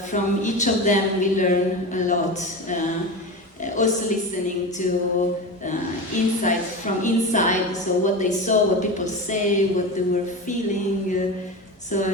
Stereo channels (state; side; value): normal; both; correlation 0.25